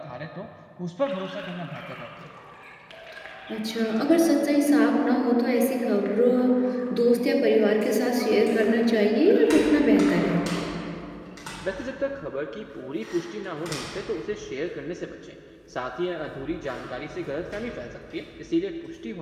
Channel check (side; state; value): both; identical; correlation 1.00